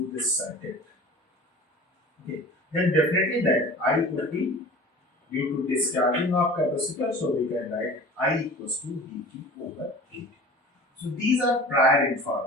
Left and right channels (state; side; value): normal; both; correlation 0.40